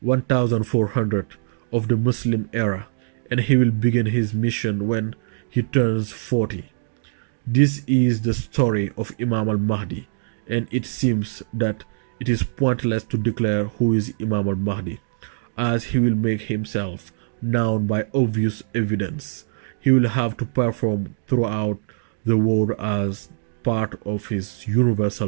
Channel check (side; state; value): left; silent; digital silence